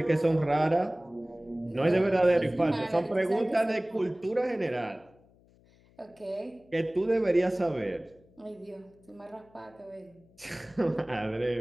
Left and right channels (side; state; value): left; noise; hum, 29 dB below the sound